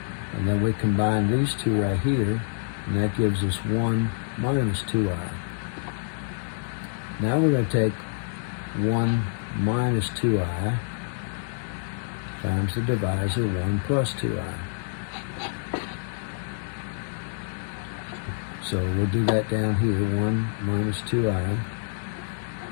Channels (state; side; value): silent; right; digital silence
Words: And then we combine these two right here, and that gives us 1 minus 2i. Now we're going to take 1 minus 2i times the divisor 1 plus 2i. So we'll do that down here, 1 minus 2i